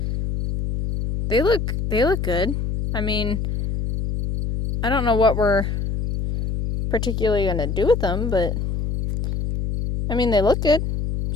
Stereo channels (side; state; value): left; noise; hum, 2 dB below the sound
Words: they look good. I mean, I don't know what we're particularly going to do with them, but I mean, they look good.